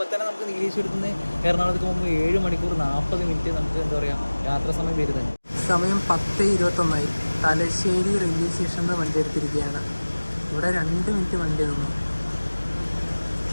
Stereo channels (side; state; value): both; inverted; correlation -1.00